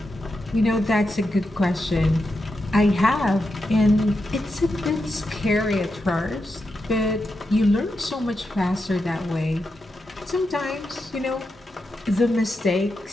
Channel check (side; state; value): both; normal; correlation 0.87